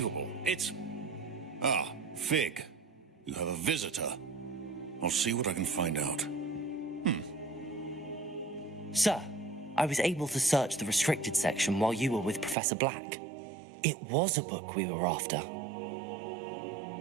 It's... Ah, Fig. You have a visitor. I'll see what I can find out. Sir, I was able to search the restricted section while you were with Professor Black. It was a book we were after.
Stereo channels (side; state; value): left; drops out; at 12.6 s